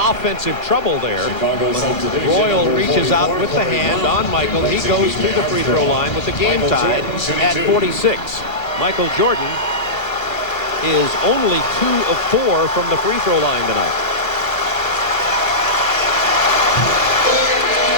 offensive trouble there. When Royal reaches out with the hand on Michael. He goes to the free throw line with the game tied at 46. Michael Jordan is only 2 of 4 from the free throw line tonight.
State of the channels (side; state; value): right; late; 1.7 ms